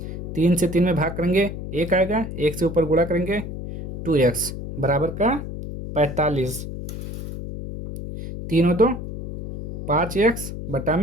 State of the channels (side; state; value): left; noise; hum, 7 dB below the sound